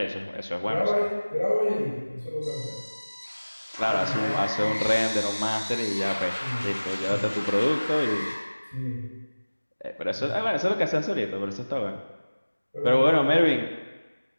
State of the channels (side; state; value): both; inverted; correlation -1.00